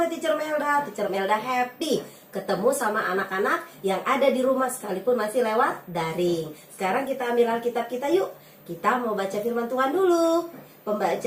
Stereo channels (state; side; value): identical; both; correlation 1.00